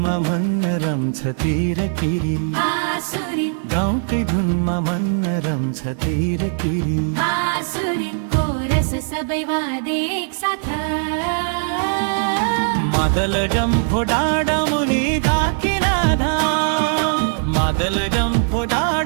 मन रम्छ तिरकिरी गाउँकै धुनमा मन रम्छ तिरकिरी सबै वादे एक साथ मादल डम्फो डाँडा मुनि धाकिनाधा मादल डम्फो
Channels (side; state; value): left; silent; digital silence